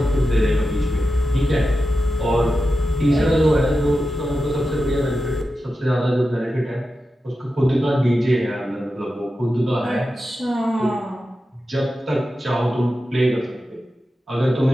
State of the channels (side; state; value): both; normal; correlation 0.91